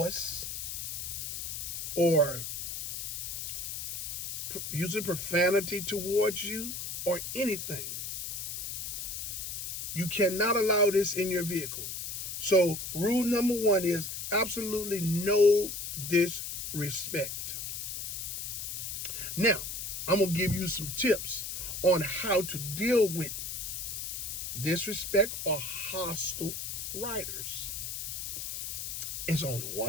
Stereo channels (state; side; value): noise; left; hiss, 5 dB below the sound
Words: or using profanity towards you or anything. You cannot allow this in your vehicle. So rule number 1 is absolutely no disrespect. Now, I'm going to give you some tips on how to deal with disrespect or hostile riders. It's only